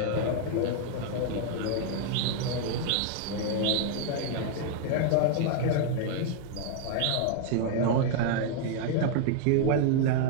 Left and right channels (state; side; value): different; both; correlation 0.00